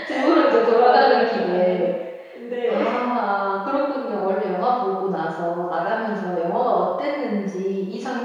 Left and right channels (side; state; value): both; identical; correlation 1.00